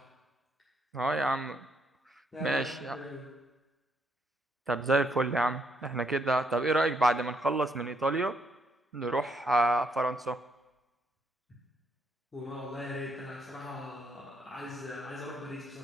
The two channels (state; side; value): normal; both; correlation 0.73